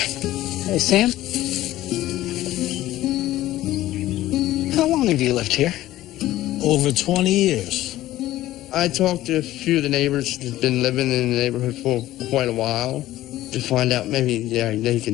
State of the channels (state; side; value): quieter; right; 15.1 dB